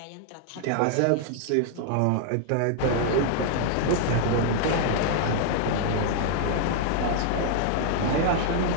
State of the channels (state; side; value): different; both; correlation 0.00